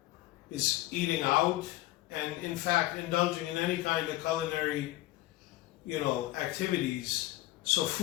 is eating out, and in fact indulging in any kind of culinary activities. So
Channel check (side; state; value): right; quieter; 16.9 dB